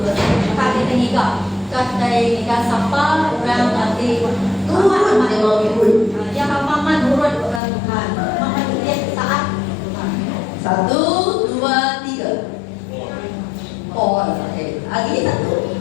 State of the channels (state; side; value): drops out; right; at 7.6 s